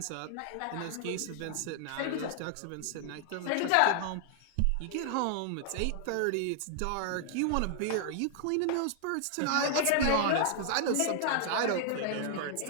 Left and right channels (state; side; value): different; both; correlation 0.00